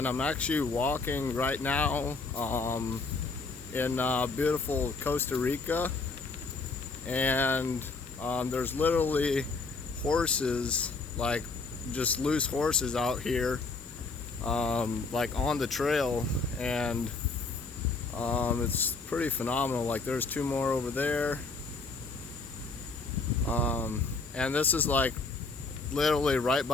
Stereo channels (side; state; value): right; quieter; 4.0 dB